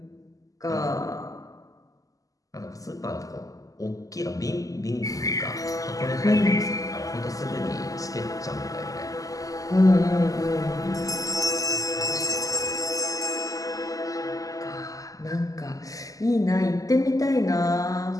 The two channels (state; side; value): late; right; 0.17 ms